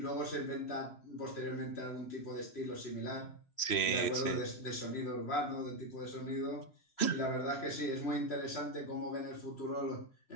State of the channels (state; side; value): late; right; 3.0 ms